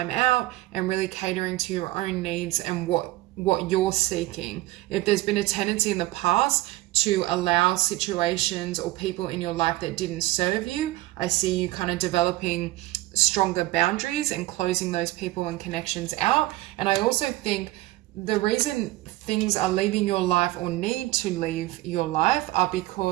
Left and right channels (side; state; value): left; quieter; 17.9 dB